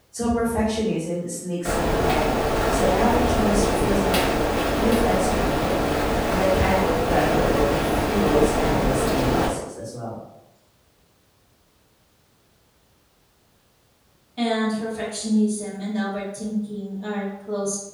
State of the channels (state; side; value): identical; both; correlation 1.00